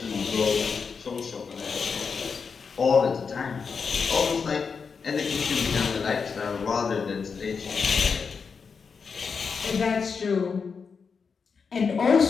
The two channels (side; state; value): right; quieter; 5.6 dB